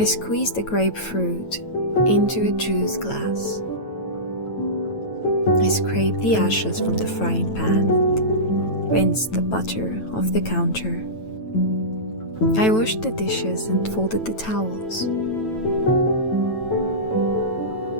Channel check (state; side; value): late; right; 9.1 ms